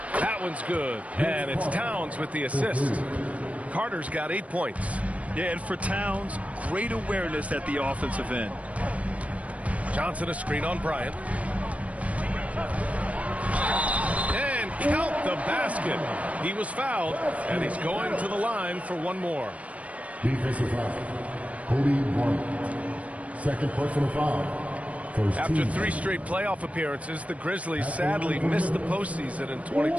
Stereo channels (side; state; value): left; late; 0.066 ms